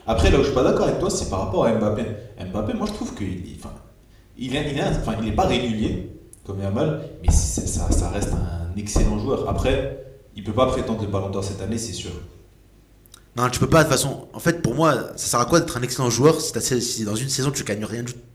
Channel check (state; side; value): identical; both; correlation 1.00